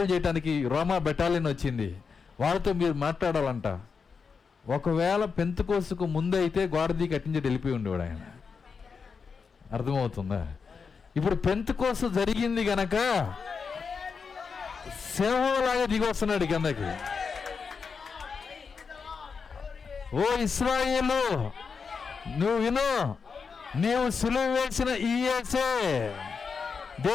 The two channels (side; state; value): right; quieter; 5.5 dB